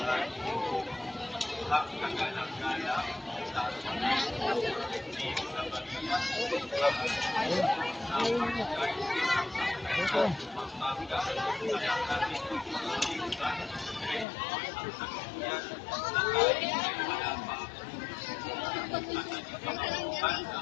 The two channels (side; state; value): right; drops out; at 14.2 s